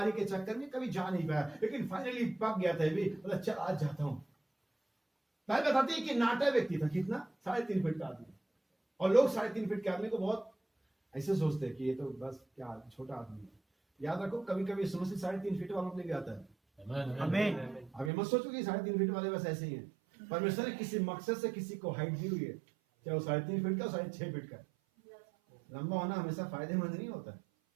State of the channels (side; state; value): left; drops out; at 18.1 s